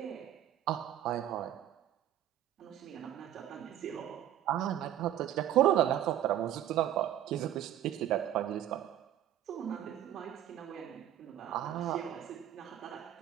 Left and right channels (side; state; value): left; quieter; 11.8 dB